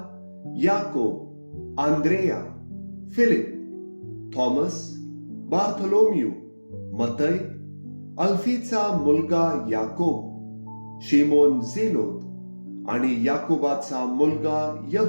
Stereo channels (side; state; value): both; inverted; correlation -1.00